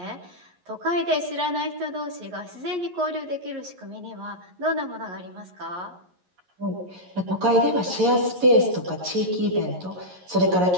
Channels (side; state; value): left; late; 11 ms